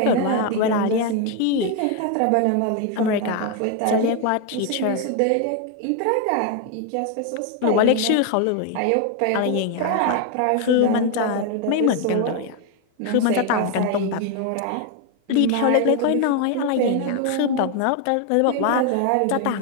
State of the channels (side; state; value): both; different; correlation 0.01